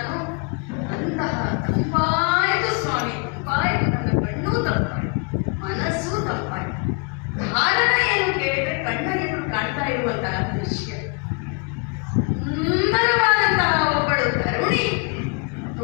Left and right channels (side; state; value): right; quieter; 34.7 dB